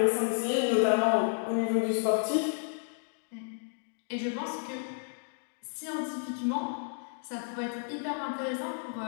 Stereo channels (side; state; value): right; silent; digital silence